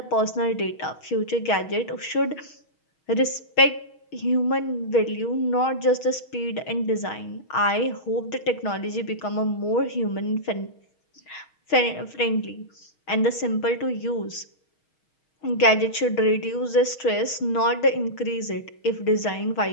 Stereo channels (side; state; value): right; late; 6.3 ms